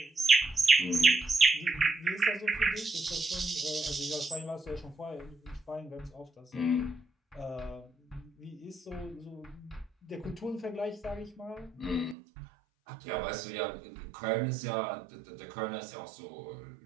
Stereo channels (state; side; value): drops out; left; at 12.2 s